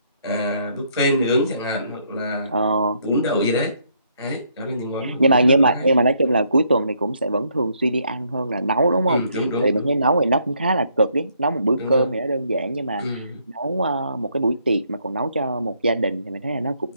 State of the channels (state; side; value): inverted; both; correlation -0.71